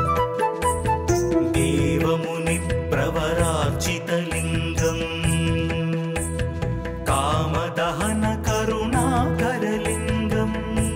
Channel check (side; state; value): both; identical; correlation 1.00